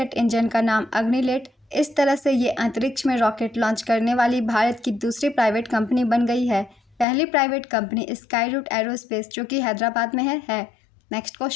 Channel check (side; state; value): right; drops out; at 7.1 s